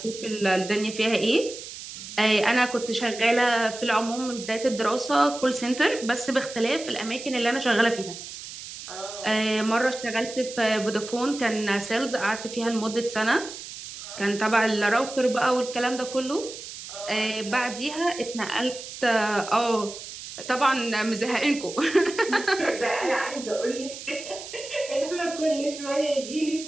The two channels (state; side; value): noise; right; hiss, 11 dB below the sound